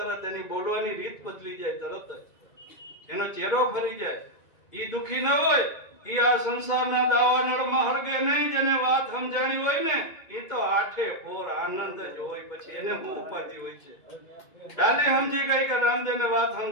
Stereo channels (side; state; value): right; late; 2.3 ms